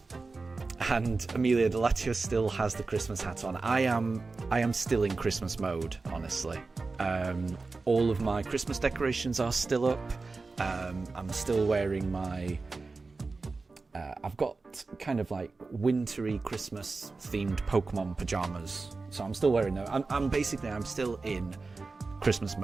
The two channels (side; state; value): left; quieter; 3.9 dB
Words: And Amelia Delatio still has the Christmas hat on. I am still in Christmas mode, honestly. All of my Christmas decorations are still up. I'm still wearing my... I've got kind of like wintry Christmas themed Pokemon pajamas. So I'm still wearing them. I'm still in Christmas